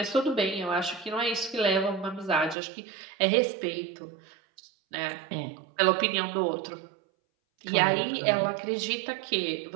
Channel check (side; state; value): left; drops out; at 2.6 s